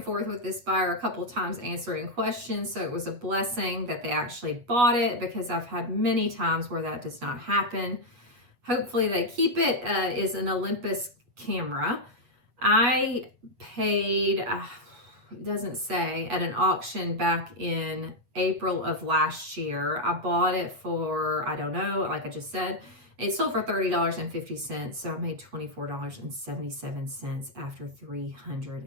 forth with this buyer a couple times answering questions, so it was a blessing that they actually bought it, because I've had many times where that does not happen. Hopefully they keep it, is an Olympus camera. I paid, it doesn't say, at an auction back in April of last year. I bought it for, I don't know, like I just said, it sold for $30.50, so I made $24.77 after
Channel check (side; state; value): left; late; 8.2 ms